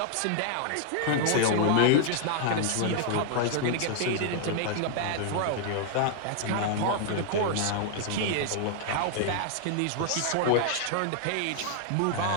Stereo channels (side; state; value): both; different; correlation 0.00